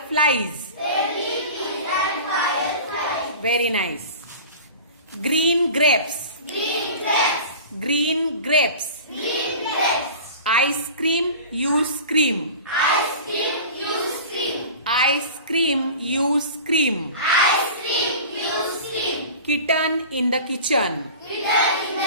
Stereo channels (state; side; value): inverted; both; correlation -0.37